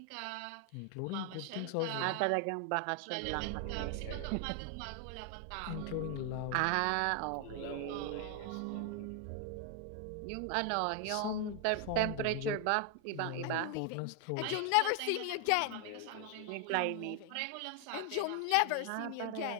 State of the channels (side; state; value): both; different; correlation 0.00